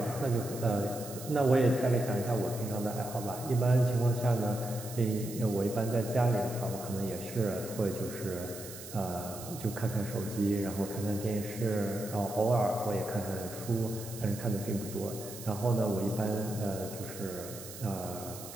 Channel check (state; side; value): noise; right; hiss, 13 dB below the sound